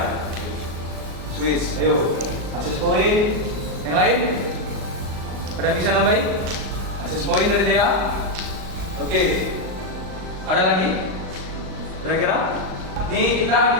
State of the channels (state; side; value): late; left; 38 ms